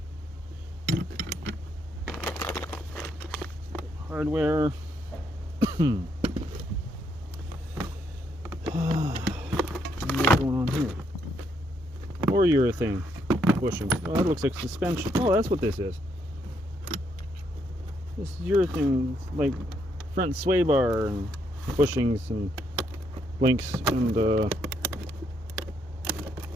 Hardware. What's going on here? Or urethane bushings. Oh, that looks like suspension. Oh, that's what this is. This is urethane, like front sway bar and bushings and links and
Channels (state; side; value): normal; both; correlation 0.74